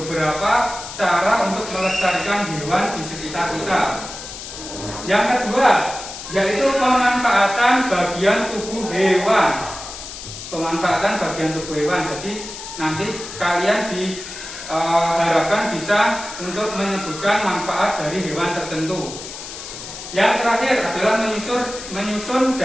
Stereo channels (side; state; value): left; noise; hiss, 11 dB below the sound